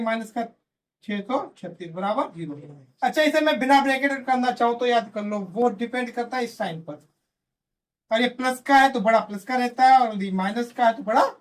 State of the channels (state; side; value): identical; both; correlation 1.00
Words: का 636 बराबर 0। अच्छा, इसे मैं बिना ब्रैकेट करना चाहूँ तो याद कर लो, वो डिपेंड करता है इस साइन पर। और ये प्लस का है तो बड़ा प्लस का रहता है, और ये माइनस का है तो बड़ा